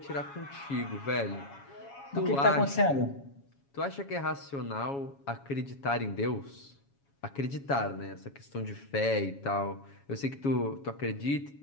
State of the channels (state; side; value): late; right; 7.2 ms